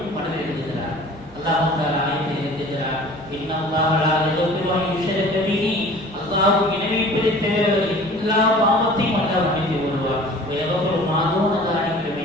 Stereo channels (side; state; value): right; noise; rumble, 23 dB below the sound